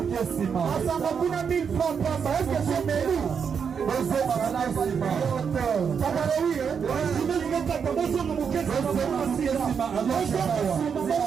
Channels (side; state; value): left; quieter; 6.7 dB